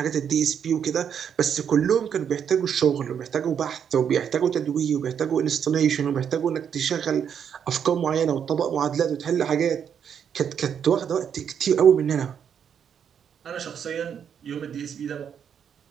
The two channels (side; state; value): left; quieter; 8.0 dB